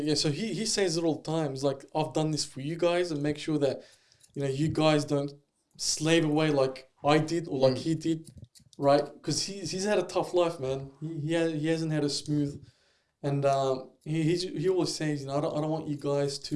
So he says it all the time. He's like, I've done this for you guys and make sure that, you know, you guys don't slave away like I did or like he did, right? Because he's had a tough life, man. He hasn't had a smooth. And he always says, you know, I don't want you guys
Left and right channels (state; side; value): identical; both; correlation 1.00